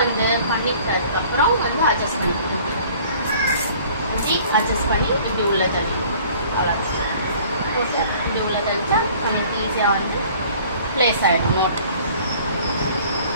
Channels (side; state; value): both; inverted; correlation -0.52